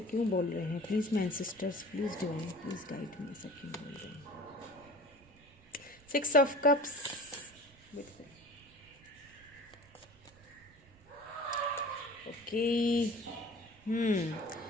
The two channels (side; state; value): right; noise; rumble, 25 dB below the sound